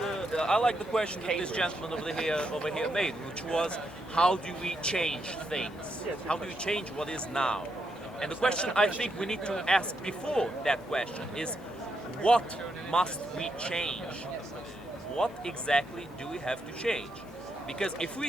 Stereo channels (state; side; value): normal; both; correlation 0.80